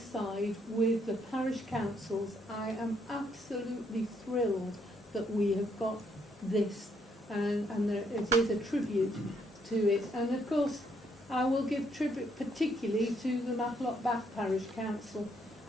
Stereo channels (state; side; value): normal; both; correlation 0.72